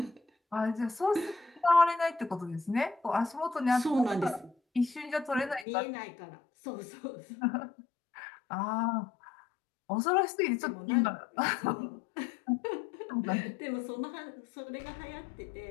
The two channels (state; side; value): drops out; right; at 5.7 s